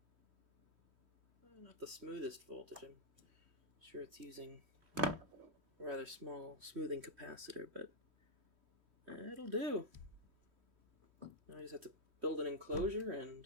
Not the smoothest voltage. I'm sure it's using a rather small smoothing capacitor, but it'll do. Now I just have to build an enclosure and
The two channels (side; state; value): left; late; 3.1 ms